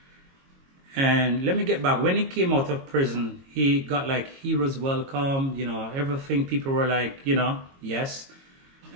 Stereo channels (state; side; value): late; left; 22 ms